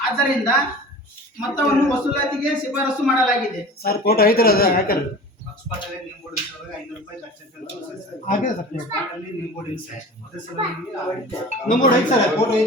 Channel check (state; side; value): normal; both; correlation 0.38